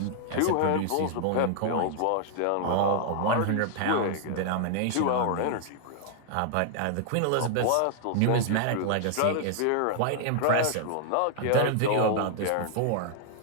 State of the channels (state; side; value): different; both; correlation -0.01